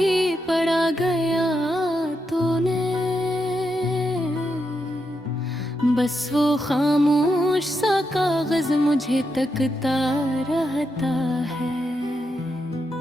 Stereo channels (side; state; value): both; normal; correlation 0.83